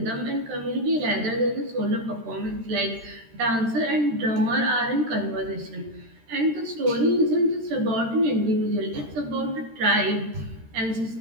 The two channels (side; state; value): left; late; 13 ms